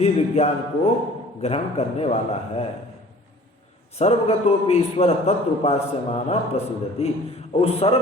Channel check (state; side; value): normal; both; correlation 0.48